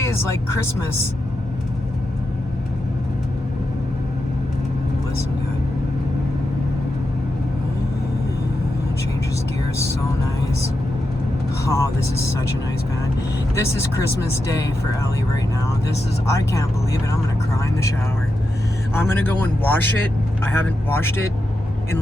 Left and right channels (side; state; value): both; normal; correlation 0.88